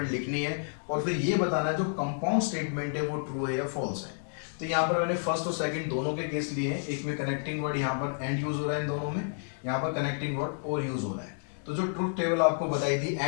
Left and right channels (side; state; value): right; silent; digital silence